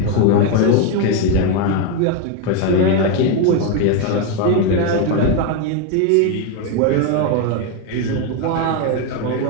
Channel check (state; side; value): different; both; correlation 0.02